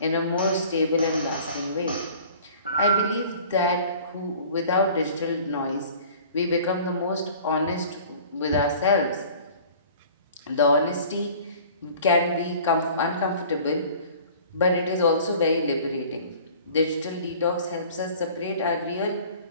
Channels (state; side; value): inverted; both; correlation -0.47